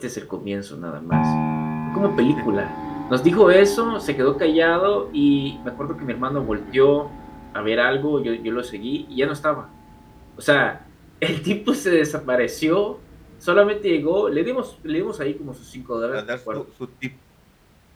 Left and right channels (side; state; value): both; identical; correlation 1.00